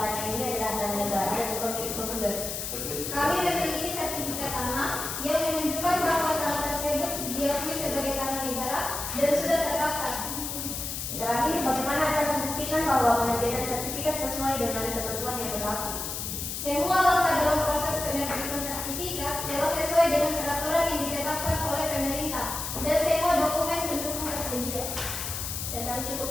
ini adalah tanah negara dan bukan milik penggugat? Kami memiliki sertifikat tanah yang menunjukkan bahwa tanah tersebut diakui sebagai tanah negara dan sudah terdaftar. Terakhir, bagaimana Anda membuktikan bahwa penerbitan sertifikat sesuai dengan ketentuan yang berlaku? Semua langkah dalam proses penerbitan sertifikat telah sesuai dengan peraturan yang ditetapkan oleh pemerintah dan semua dokumen pendukung tersedia. Dan kami cukup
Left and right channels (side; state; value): left; noise; hiss, 5 dB below the sound